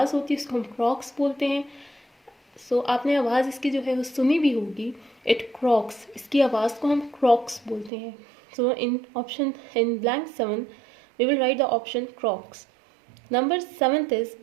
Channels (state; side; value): drops out; left; at 7.9 s